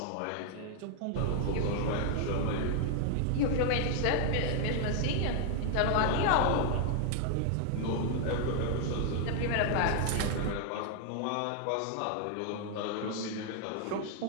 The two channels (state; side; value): different; both; correlation 0.00